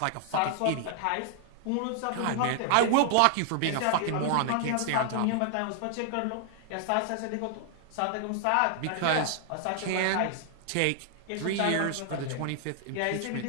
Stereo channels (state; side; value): different; both; correlation 0.00